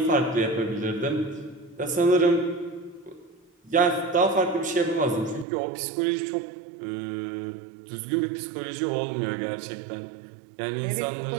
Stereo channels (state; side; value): drops out; left; at 5.5 s